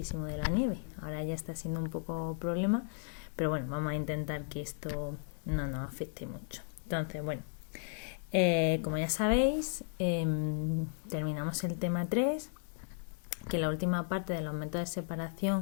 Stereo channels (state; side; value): silent; right; digital silence